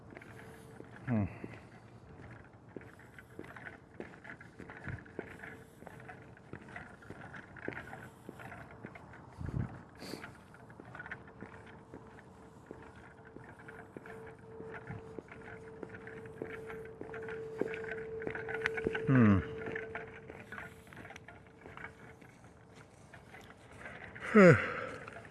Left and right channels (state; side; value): identical; both; correlation 1.00